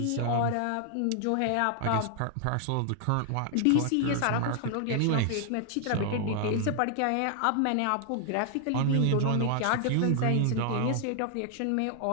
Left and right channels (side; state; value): both; different; correlation 0.00